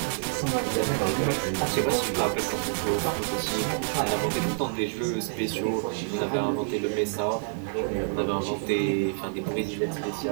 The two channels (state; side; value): silent; left; digital silence